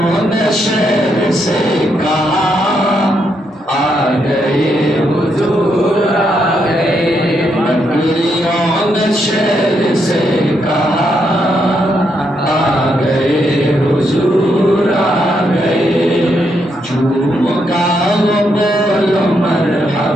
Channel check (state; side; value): normal; both; correlation 0.78